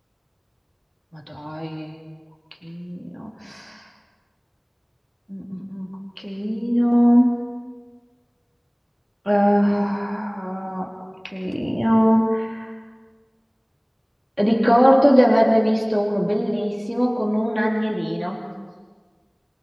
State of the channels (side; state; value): both; identical; correlation 1.00